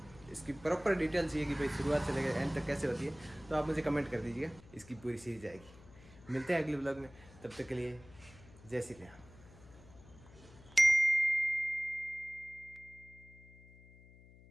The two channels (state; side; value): noise; left; hum, 22 dB below the sound